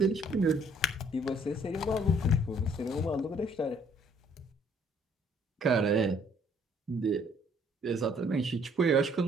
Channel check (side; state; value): both; normal; correlation 0.62